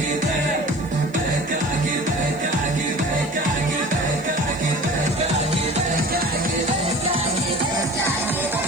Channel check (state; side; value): noise; left; hiss, 27 dB below the sound